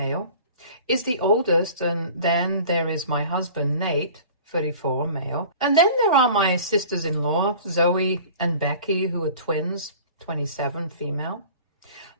is the oldest, and then there is my husband, Nate, 34, male. And then there are my sisters-in-law, Zoe and Becky, who are twins, 27, female.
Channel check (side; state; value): both; inverted; correlation -0.43